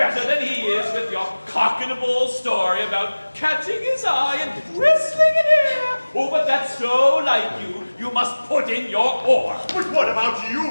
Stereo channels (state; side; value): inverted; both; correlation -1.00